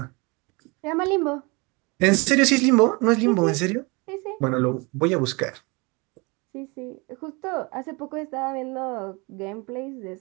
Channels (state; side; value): quieter; left; 28.1 dB